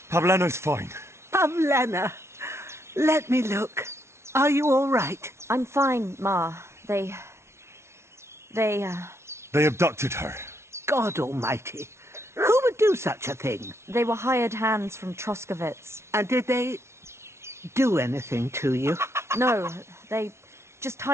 Pavlena's fine. Pavlena, let me look. Are you all right? I'm fine, Ma. They abducted her. God almighty. Who would do such a thing? They were hired hands from Troskovitz. And did they do anything to you? No, they just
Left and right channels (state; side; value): late; left; 0.13 ms